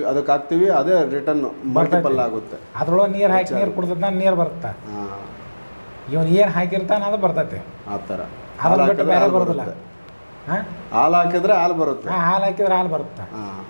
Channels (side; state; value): both; inverted; correlation -1.00